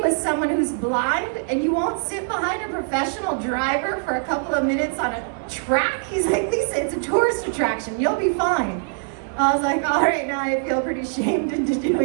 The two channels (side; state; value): left; silent; 59 dB below the other